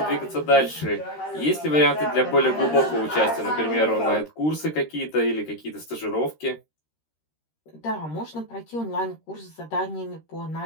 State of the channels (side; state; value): right; late; 13 ms